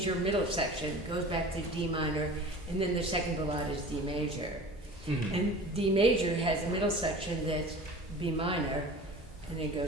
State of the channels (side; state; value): both; normal; correlation 0.39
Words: middle section, goes back to D minor, and then the second ballade is D major. And D major has a middle section that's B minor, and then